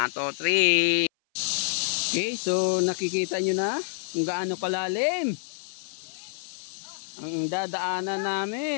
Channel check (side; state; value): right; silent; 56 dB below the other